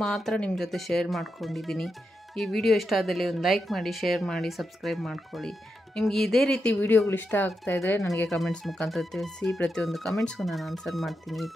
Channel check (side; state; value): both; normal; correlation 0.86